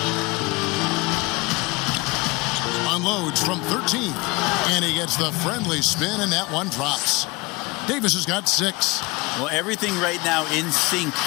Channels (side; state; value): right; quieter; 24.3 dB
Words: Unloads from 13. And he gets the friendly spin, and that one drops. Davis has got 6. Well, everything right now in sync